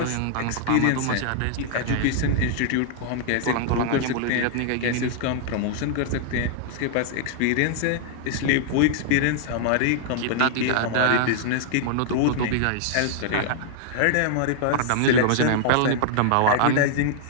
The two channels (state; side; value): different; both; correlation -0.01